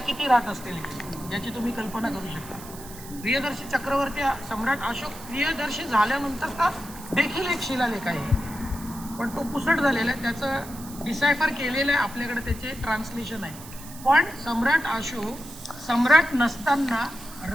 किती राहत असतील याची तुम्ही कल्पना करू शकता. प्रियदर्शी चक्रवर्ती सम्राट अशोक प्रियदर्शी झाल्यानंतरचा देखील एक शिलालेख आहे, पण तो पुसट झालेला आहे, त्याचं डिसायफर केलेलं आहे, आपल्याकडे त्याचे ट्रान्सलेशन आहे. पण सम्राट अशोक सम्राट नसताना,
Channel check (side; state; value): right; noise; hiss, 16 dB below the sound